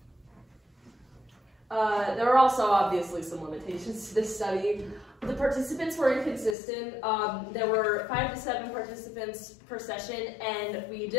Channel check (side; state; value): right; drops out; at 6.6 s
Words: There were also obviously some limitations to this study. The participants were inconsistent. There were 5 to 7 participants per session, and we